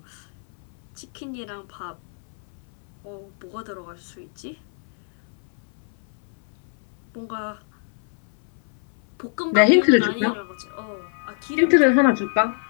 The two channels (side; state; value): right; silent; 60 dB below the other